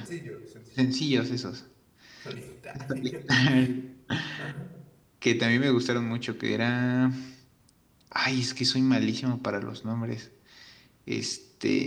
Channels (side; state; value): both; identical; correlation 1.00